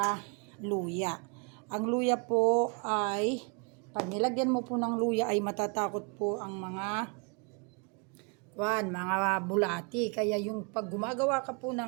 luya. Ang luya po ay, pag nilagyan mo po ng luya ay matatakot po ang mga bulati. Kaya yung pag gumagawa ka po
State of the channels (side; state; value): left; quieter; 34.9 dB